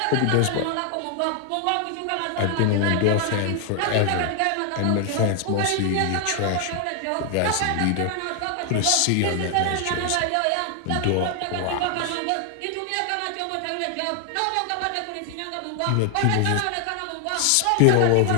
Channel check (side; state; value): both; different; correlation 0.00